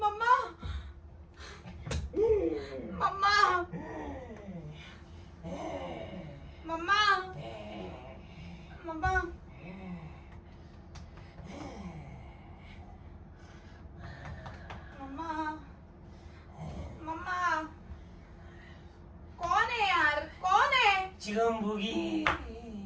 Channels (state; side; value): identical; both; correlation 1.00